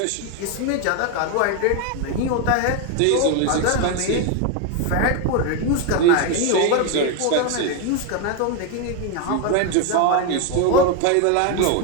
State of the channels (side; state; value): both; different; correlation 0.01